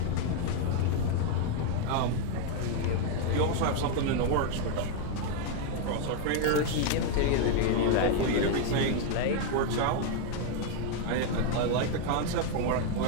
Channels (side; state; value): both; different; correlation 0.01